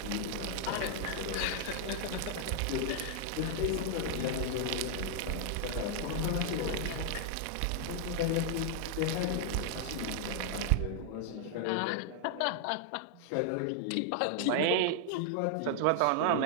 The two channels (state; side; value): different; both; correlation 0.00